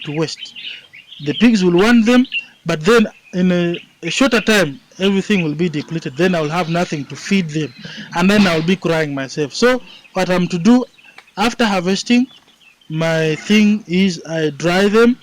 to waste. The pigs will want them, but then in a shorter time, everything will be depleted. Then I will have nothing to feed them, and then I will be crying myself. So what I'm to do after harvesting, my thing is I dry them,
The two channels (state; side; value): identical; both; correlation 1.00